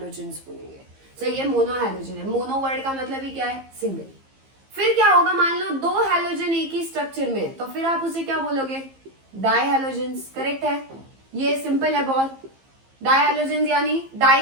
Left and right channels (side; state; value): left; late; 15 ms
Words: बोलेंगे। तो ये मोनोहैलोजन है। मोनो वर्ड का मतलब ही क्या है? सिंगल। फिर क्या होगा, मान लो 2 हैलोजन एक ही स्ट्रक्चर में, तो फिर आप उसे क्या बोलोगे? डायहैलोजन्स। करेक्ट है, ये सिंपल है बहुत। डायहैलोजन्स यानी डाई